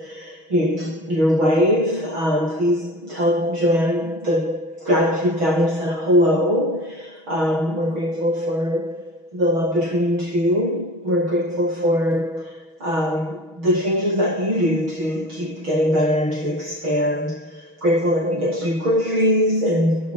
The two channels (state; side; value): late; left; 6.3 ms